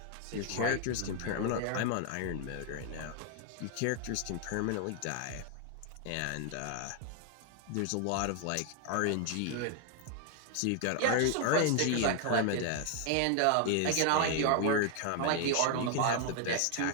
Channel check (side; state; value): both; different; correlation 0.00